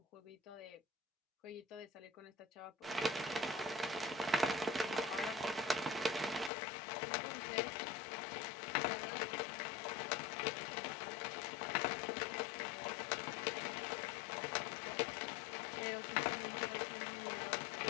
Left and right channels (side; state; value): right; drops out; at 6.5 s